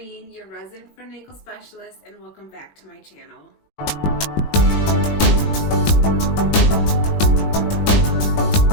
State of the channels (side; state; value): right; late; 20 ms